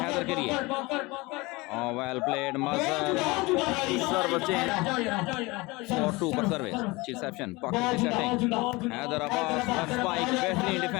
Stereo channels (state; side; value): quieter; right; 23.4 dB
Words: के लिए well played Mazhar service change 4-2 पर सर्विस रिसेप्शन बाकर की setting Haider Abbas left spike बेहतरीन